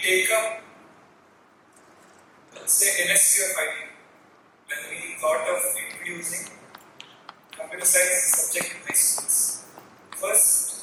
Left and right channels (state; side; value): identical; both; correlation 1.00